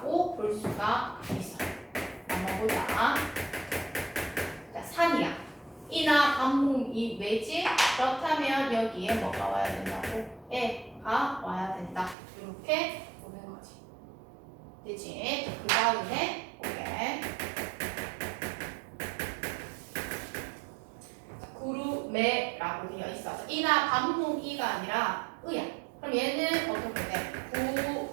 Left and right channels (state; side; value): drops out; left; at 12.2 s